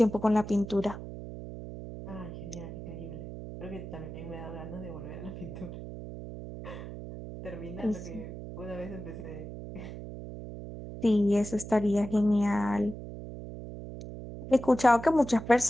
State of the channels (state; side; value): noise; right; hum, 10 dB below the sound